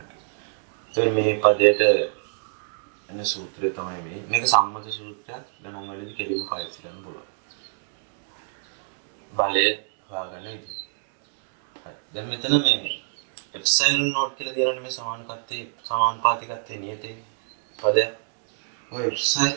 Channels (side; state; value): left; silent; digital silence